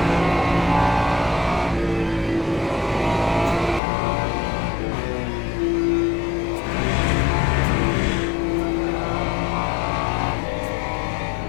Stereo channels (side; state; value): right; drops out; at 3.8 s